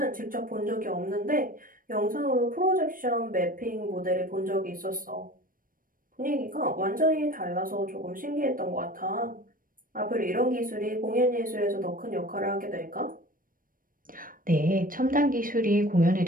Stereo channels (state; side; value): late; left; 0.40 ms